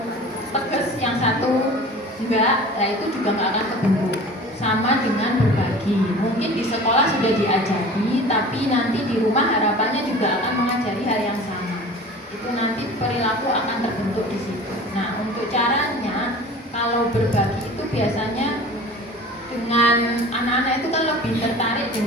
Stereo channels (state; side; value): normal; both; correlation 0.40